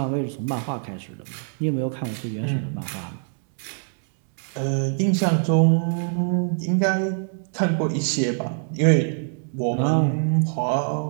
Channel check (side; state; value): left; silent; 62 dB below the other